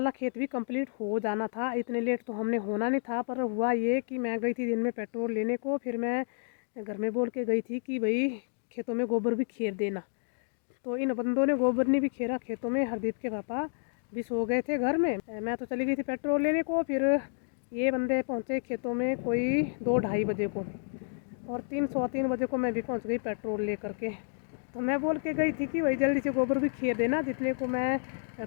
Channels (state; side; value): silent; right; digital silence